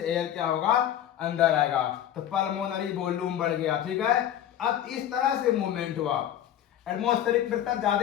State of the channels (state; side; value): quieter; right; 11.1 dB